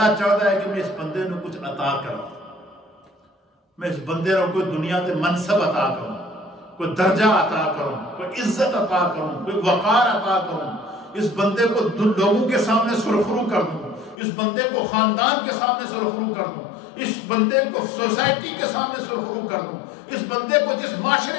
چاہتا ہے کہ میں اس بندے نے کچھ عطا کروں، میں اس بندے نے کوئی دنیا کے منصب عطا کروں، کوئی درجہ عطا کروں، کوئی عزت عطا کروں، کوئی وقار عطا کروں، اس بندے کو لوگوں کے سامنے سرخرو کر دوں، اس بندے کو خاندان کے سامنے سرخرو کر دوں، اس بندے کو سوسائٹی کے سامنے سرخرو کر دوں، اس بندے کو جس معاشرے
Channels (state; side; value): drops out; right; at 14.2 s